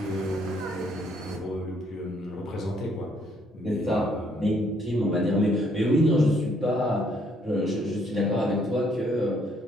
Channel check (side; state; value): both; normal; correlation 0.68